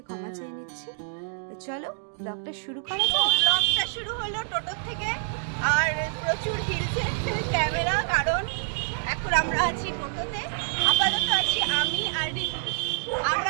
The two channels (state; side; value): silent; left; digital silence